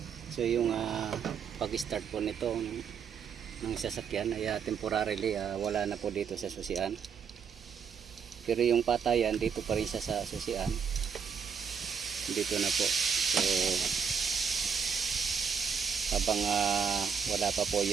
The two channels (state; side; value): quieter; left; 6.8 dB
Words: So yung pag-start po nito ng sasakyan ay temporarily wala na po dito sa susian. Pero yung patayan dito pa rin siya sa susian. Dito na po. So habang wala pa po